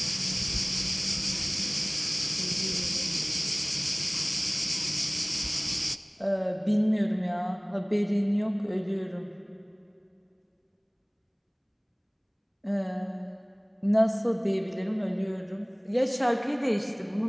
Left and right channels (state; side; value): identical; both; correlation 1.00